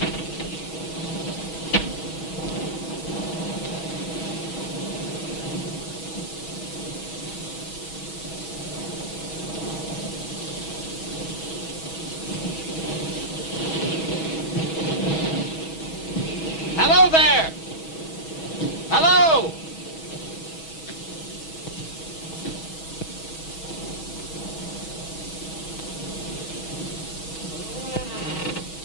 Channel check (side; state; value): right; late; 6.2 ms